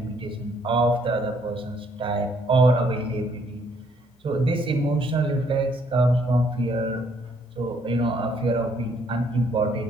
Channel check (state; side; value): normal; both; correlation 0.67